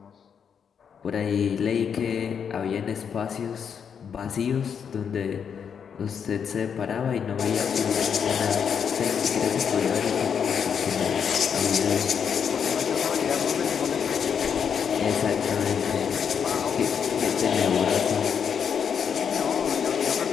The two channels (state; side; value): quieter; right; 7.2 dB